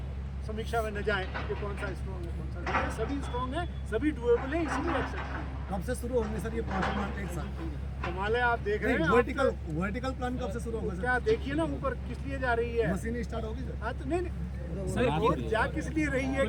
समीक्षा में न जाएं कि कौन सा स्ट्रॉन्ग है कौन सा नहीं है। सभी स्ट्रॉन्ग है, सभी डुएबल है, इसीलिए एक्सेप्ट हैं। कब से शुरू होंगे सर ये 5 मिनट एक साथ? कमाल है, आप देख रहे हैं। वर्टिकल प्लान कब से शुरू होगा सर? क्या देखिए ना ऊपर किस लिए जा रही है मशीनें स्टार्ट होगी सर? हाँ तो नहीं सर रोड जा किस लिए रही है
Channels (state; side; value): identical; both; correlation 1.00